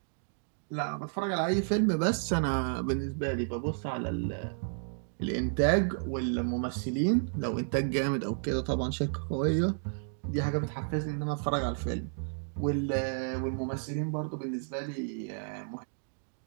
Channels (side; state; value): left; silent; digital silence